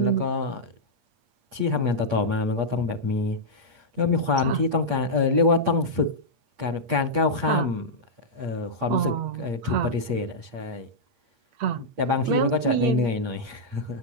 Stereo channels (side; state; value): left; late; 8.5 ms